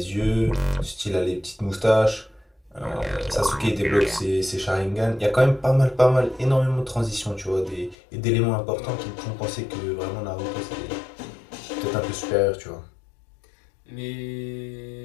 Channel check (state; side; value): drops out; right; at 8.0 s